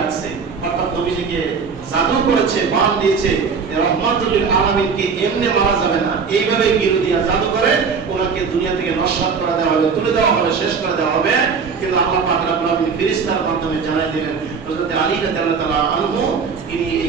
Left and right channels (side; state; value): left; quieter; 5.6 dB